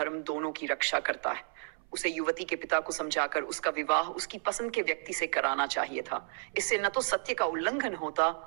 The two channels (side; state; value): left; silent; 56 dB below the other